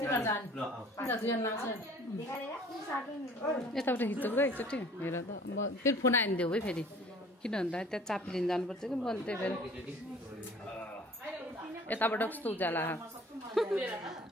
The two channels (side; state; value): both; normal; correlation 0.50